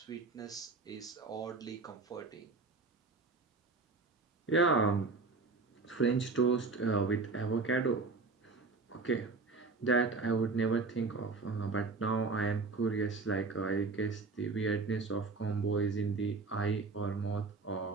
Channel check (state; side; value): quieter; left; 4.1 dB